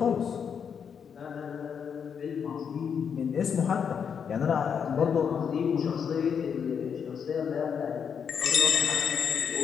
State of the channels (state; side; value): quieter; right; 7.1 dB